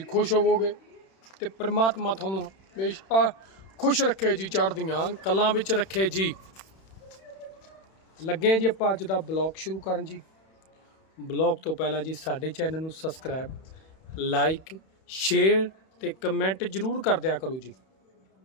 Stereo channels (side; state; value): right; late; 31 ms